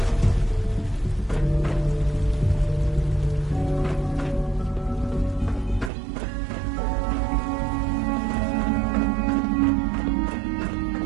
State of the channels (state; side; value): drops out; left; at 5.9 s